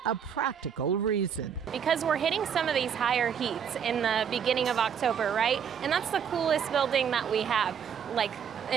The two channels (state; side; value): quieter; left; 7.8 dB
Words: a practical reason. Because we're hitting some of these higher heats in the beginning of October, right? And that's the coolest building that we have, like